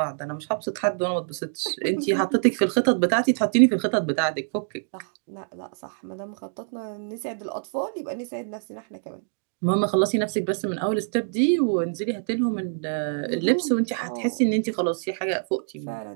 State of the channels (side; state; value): left; silent; digital silence